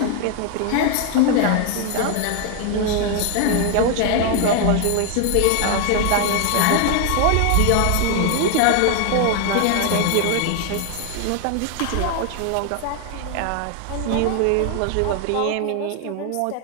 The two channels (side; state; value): both; different; correlation 0.00